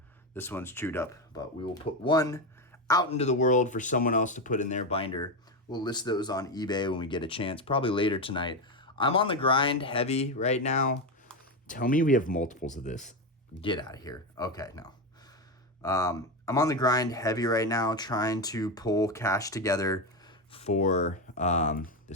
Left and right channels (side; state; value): both; normal; correlation 0.13